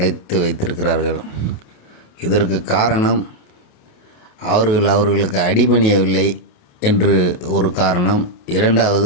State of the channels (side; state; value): right; late; 28 ms